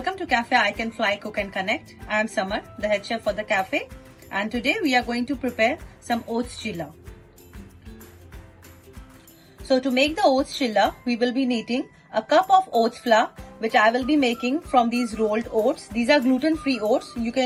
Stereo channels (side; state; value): both; identical; correlation 1.00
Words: to Cafe I Can Fly Cook and Connect. I am Samar, the head chef for the cafe, and today we are going to prepare some oats chilla. So to make the oats chilla, we will be needing a cup of oats flour, which I will be making from these rolled oats. These are gluten-free oats. You